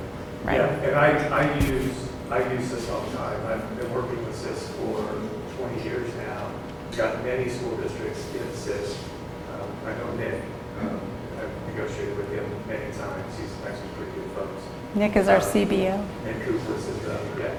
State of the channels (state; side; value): identical; both; correlation 1.00